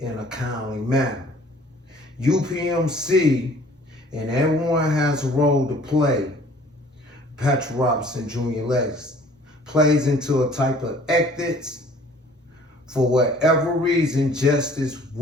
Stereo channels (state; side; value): normal; both; correlation 0.53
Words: a kindly manner. UPMC and everyone has a role to play. Patrick Robinson Jr. legacy plays into a type of ethics. For whatever reason, justice